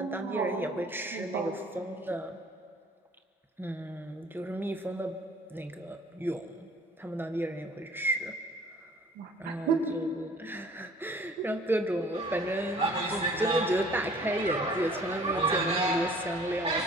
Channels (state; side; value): normal; both; correlation 0.52